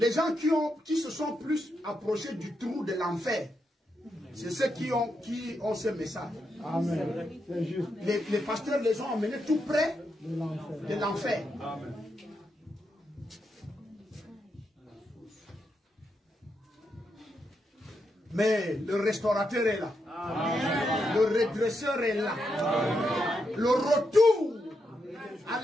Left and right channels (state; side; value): normal; both; correlation 0.83